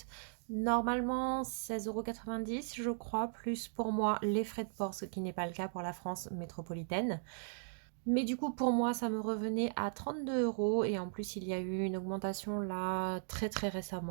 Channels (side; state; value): left; silent; digital silence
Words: normalement 16,90 € je crois, plus pour moi les frais de port, ce qui n'est pas le cas pour la France métropolitaine. Mais du coup, pour moi, ça me revenait à 32 € et en plus, il y a eu une augmentation là très